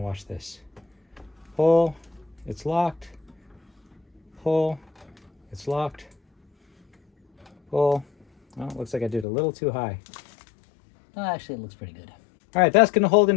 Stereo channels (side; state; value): right; drops out; at 9.2 s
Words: watch this. Pull. It's locked. Pull. It's locked. Pull. Oh, looks like I did a little too high. Oh, actually, it looks pretty good. All right, that's going to hold